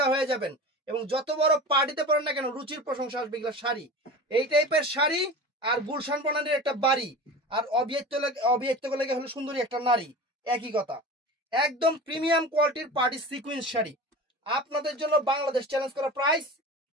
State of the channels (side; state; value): both; normal; correlation 0.33